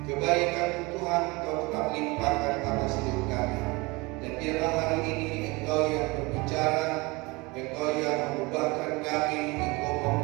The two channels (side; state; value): left; quieter; 24.7 dB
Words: kebaikan Tuhan Engkau tetap limpahkan atas hidup kami. Dan biarlah hari ini Engkau yang berbicara, Engkau yang mengubahkan kami, Engkau